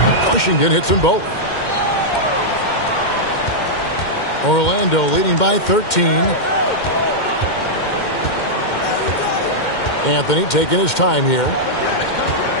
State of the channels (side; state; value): right; late; 2.1 ms